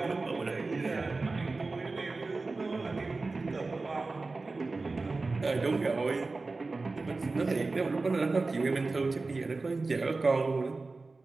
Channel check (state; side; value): quieter; left; 3.6 dB